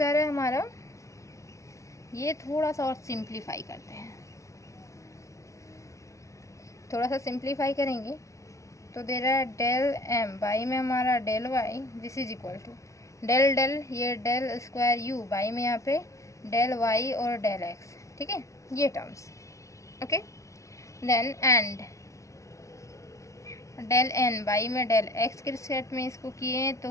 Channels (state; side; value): late; right; 0.15 ms